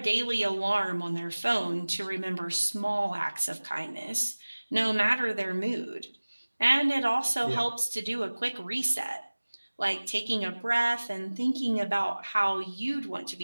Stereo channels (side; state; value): both; inverted; correlation -1.00